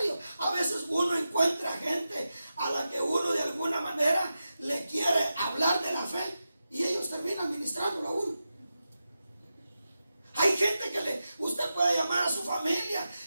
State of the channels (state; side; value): inverted; both; correlation -0.91